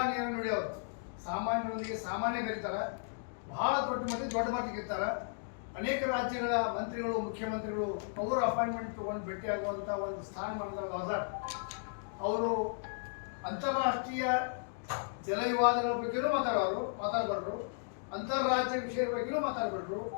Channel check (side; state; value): right; silent; digital silence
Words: ನುಡಿಯವರು. ಸಾಮಾನ್ಯರಿಗೆ ಸಾಮಾನ್ಯ ಬೆರೀತಾರೆ, ಬಹಳ ದೊಡ್ಡ ಮಟ್ಟಿಗೆ ಇರ್ತಾರೆ. ಅನೇಕ ರಾಜ್ಯಗಳ ಮಂತ್ರಿಗಳು, ಮುಖ್ಯಮಂತ್ರಿಗಳು ಅವರು ಅಪಾಯಿಂಟ್ಮೆಂಟ್ ತಗೊಂಡು ಭೇಟಿಯಾಗುವಂಥ ಒಂದು ಸ್ಥಾನಮಾನದ ಅವರು ಅಂತಾರಾಷ್ಟ್ರೀಯ ಜಲ ವಿವಾದಗಳ ಬಗ್ಗೆಯೂ ಮಾತಾಡಬಾರ್ದು, ಅಂತಾರಾಜ್ಯ ವಿಷಯದ ಬಗ್ಗೆಯೂ ಮಾತಾಡಬಾರ್ದು,